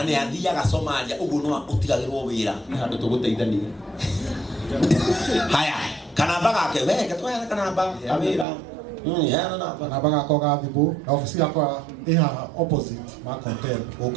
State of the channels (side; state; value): left; drops out; at 8.5 s